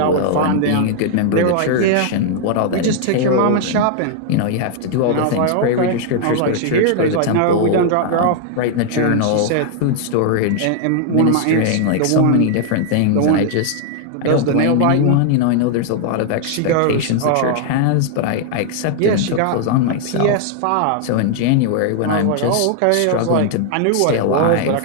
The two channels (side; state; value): both; different; correlation 0.00